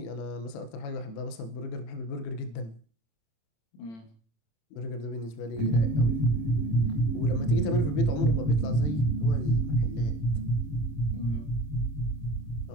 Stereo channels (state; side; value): late; right; 27 ms